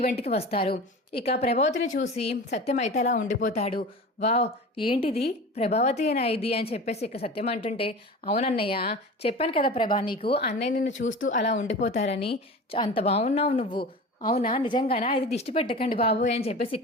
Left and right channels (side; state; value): both; normal; correlation 0.34